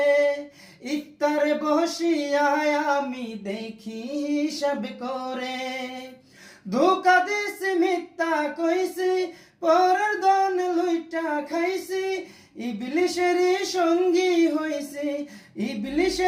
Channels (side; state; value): both; identical; correlation 1.00